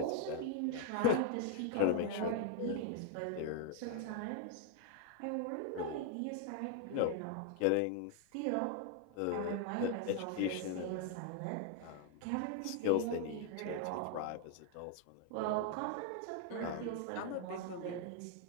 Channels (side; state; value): both; different; correlation 0.00